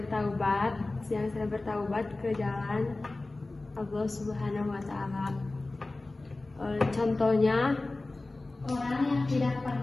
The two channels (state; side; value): quieter; right; 3.1 dB